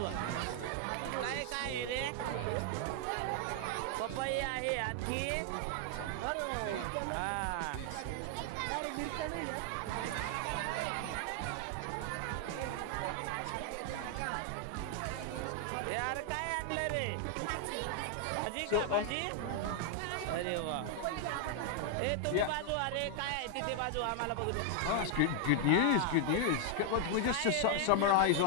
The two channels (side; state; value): both; different; correlation 0.00